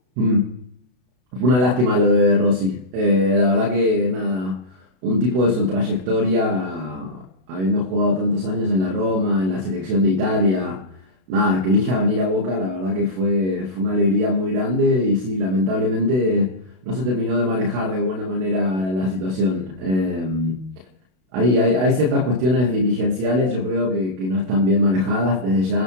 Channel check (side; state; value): left; late; 32 ms